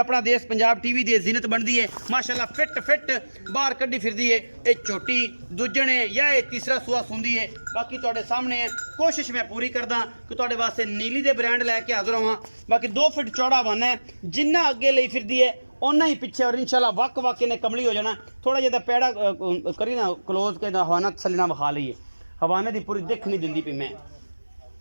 देश पंजाब टीवी की जीनत बनती है माशाअल्लाह। फिट बाहर कड्डी फिरदी है। ये छोटी दूजने या ये तीसरा सूआ सुंदी है। बाकी तुहाडे सामने है। कोशिश मैं पूरी करदा कि तुहाडे वास्ते नीली दे ब्रांड लैके हाज़र होवां। बाकी 2 फुट चौड़ा वन है, जिन्ना अगे लई फिरदी है उन्ना ही पिछे। और इंशाअल्लाह वक इन्हें कमली हो जाना। थोड़ा जिहा पैड़ा करी ना क्लोज के हवाना तसली ना विखा लईए। हवाने की पूरी दिख नहीं दिंदी पई, मैं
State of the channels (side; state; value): both; inverted; correlation -1.00